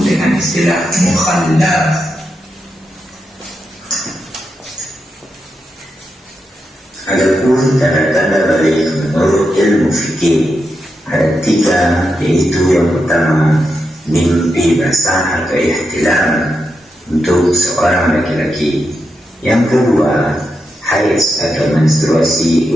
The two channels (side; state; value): both; normal; correlation 0.86